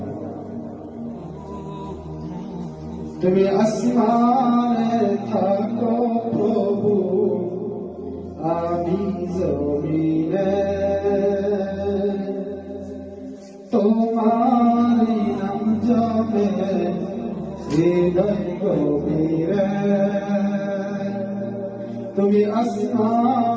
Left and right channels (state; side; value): identical; both; correlation 1.00